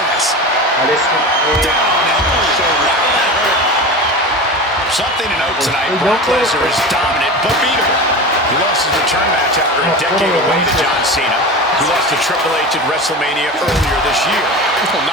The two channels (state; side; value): normal; both; correlation 0.29